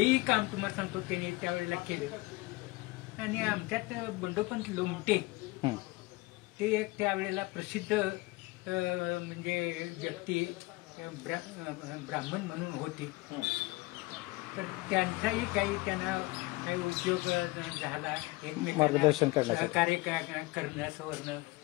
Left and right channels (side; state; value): right; quieter; 22.1 dB